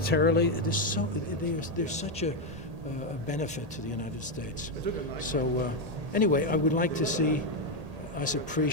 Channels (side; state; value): left; late; 1.8 ms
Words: There's such a benefit to the United States. So anyway, I would like to see us